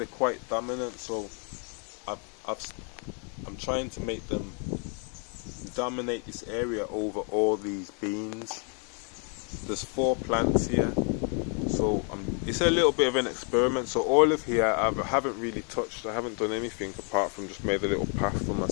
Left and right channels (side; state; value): right; quieter; 39.8 dB